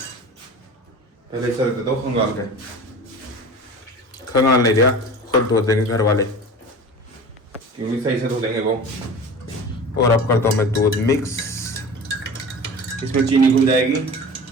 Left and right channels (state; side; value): normal; both; correlation 0.36